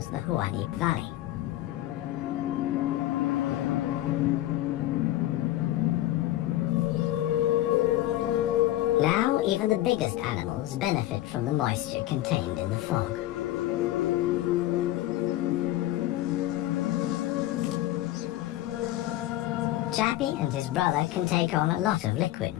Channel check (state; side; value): quieter; right; 15.0 dB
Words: the Huanib Valley. Now, even the biggest animals benefit from the moisture contained in the fog. Jappy and his brother can take on a lot of liquid